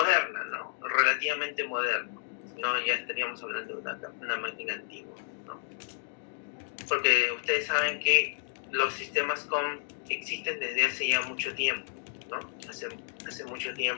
¿no? Relativamente moderna. No, ya estaríamos hablando de una máquina antigua, ¿no? Porque ustedes saben que los sistemas COM existen desde hace ya mucho tiempo, ¿no? Hace mucho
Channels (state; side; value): silent; right; 57 dB below the other